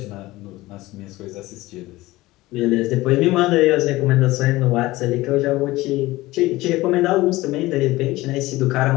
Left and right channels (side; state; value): right; quieter; 18.7 dB